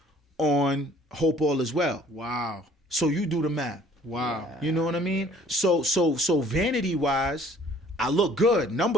on Hope All Is Well. Wow. So you do the math. Wow. You know what I mean? So vanity wise, I look good.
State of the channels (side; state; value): both; normal; correlation 0.55